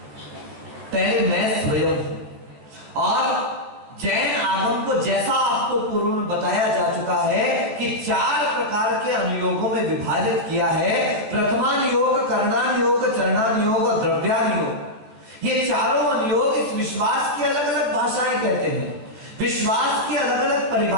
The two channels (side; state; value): left; late; 14 ms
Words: पहले मैं स्वयं। और जैन आगम को जैसा आपको पूर्व में बताया जा चुका है कि 4 प्रकार के अनुयोगों में विभाजित किया है। प्रथमान योग, करणान योग, चरणान योग और द्रव्यान योग। ये चारों अनुयोग इस विश्वास की अलग अलग भाषाएं कहते हैं, विश्वास की अलग अलग